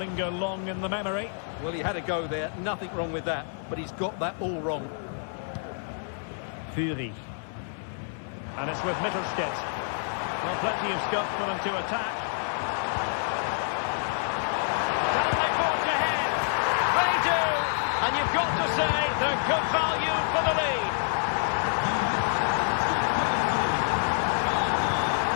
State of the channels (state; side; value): silent; right; 60 dB below the other